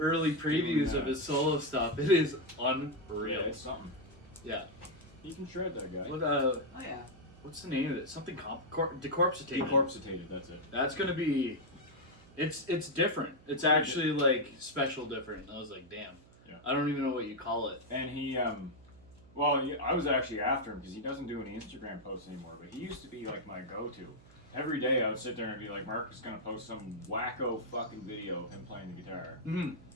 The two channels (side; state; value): right; noise; hum, 24 dB below the sound